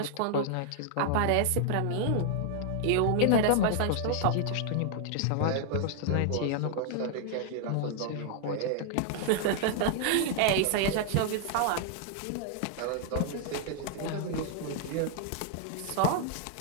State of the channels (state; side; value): different; both; correlation 0.00